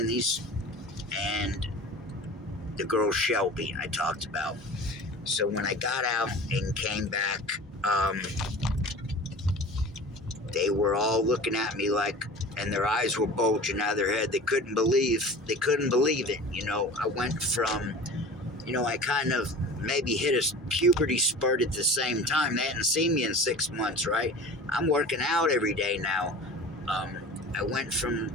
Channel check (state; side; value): normal; both; correlation 0.38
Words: the girl Shelby I talked about. So when I got out and came back, they were all looking at me and their eyes were bulging out of their head. They couldn't believe it. I went from, I kind of maybe hit a puberty spurt at the same time. They hadn't seen me in 6 months, right? I'm working out every day now. I went from